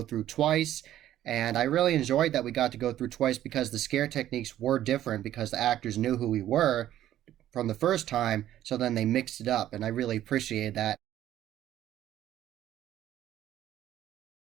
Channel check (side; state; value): left; quieter; 12.5 dB